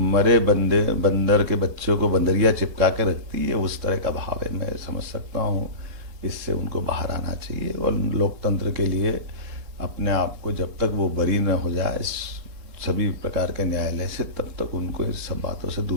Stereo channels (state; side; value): late; left; 3.7 ms